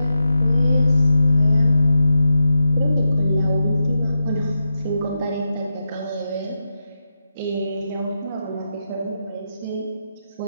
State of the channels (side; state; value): both; inverted; correlation -0.88